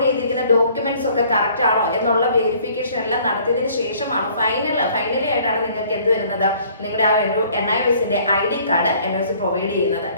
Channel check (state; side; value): inverted; both; correlation -0.57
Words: ചെയ്തിരിക്കുന്ന ഡോക്യുമെന്റ്സ് ഒക്കെ കറക്റ്റ് ആണോ എന്നുള്ള വെരിഫിക്കേഷൻ എല്ലാം നടത്തിയതിനു ശേഷമാണ് ഫൈനലി ആയിട്ടാണ് നിങ്ങൾക്ക് എന്ത് വരുന്നത്, നിങ്ങളുടെ ആ ഒരു NIOSന്റെ ID കാർഡ് NIOS പ്രൊവൈഡ് ചെയ്യുന്നത്